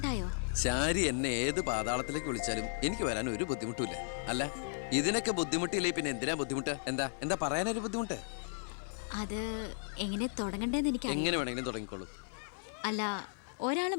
ശാരി എന്നെ ഏത് പാതാളത്തിലേക്ക് വിളിച്ചാലും എനിക്ക് വരാൻ ഒരു ബുദ്ധിമുട്ടുമില്ല. അല്ല, ഇതിനൊക്കെ ബുദ്ധിമുട്ടില്ലേ പിന്നെ എന്തിനാ ബുദ്ധിമുട്ട്? എന്താ പറയാനൊരു ബുദ്ധിമുട്ട്? അത് എങ്ങനെ തുടങ്ങണ്ടേന്ന് എനിക്ക് എങ്ങനെ വേണമെങ്കിലും തുടങ്ങിക്കോളൂ. അല്ല, ഒരാള്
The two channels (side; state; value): right; silent; digital silence